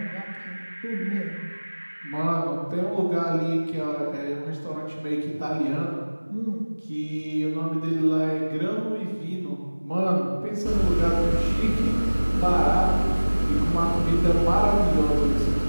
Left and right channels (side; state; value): both; inverted; correlation -1.00